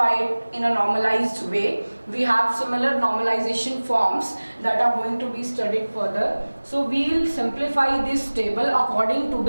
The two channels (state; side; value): inverted; both; correlation -1.00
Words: it in a normalized way. We have similar normalization forms that are going to be studied further. So we will simplify this table according to